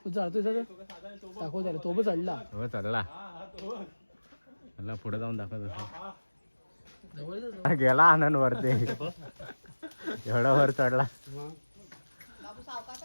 तू चढतोय दाखव त्याला. तो पण चढला. हो चढला. मला पुढे जाऊन दाखवत गेला आनंद वरती एवढा वर चढला.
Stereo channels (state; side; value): inverted; both; correlation -1.00